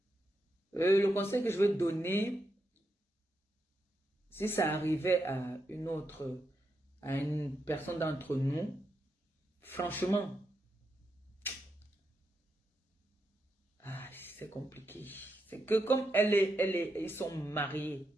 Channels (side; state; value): both; normal; correlation 0.83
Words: le conseil que je veux donner, si ça arrivait à une personne d'entre nous, franchement, c'est compliqué. C'est que comme ils sont mariés.